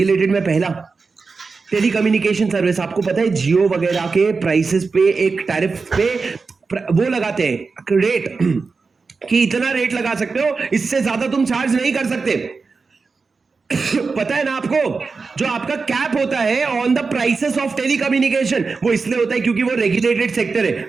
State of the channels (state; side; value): quieter; left; 4.5 dB